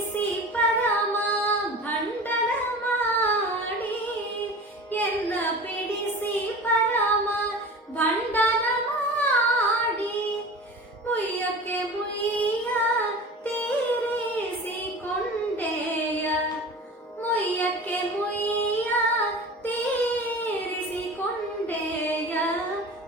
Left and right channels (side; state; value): both; normal; correlation 0.36